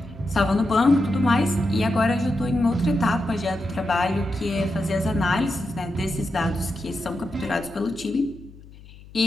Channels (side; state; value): left; noise; hum, 20 dB below the sound